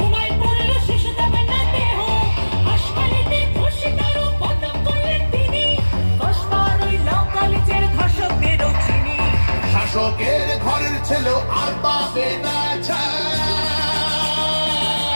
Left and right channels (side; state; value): both; inverted; correlation -1.00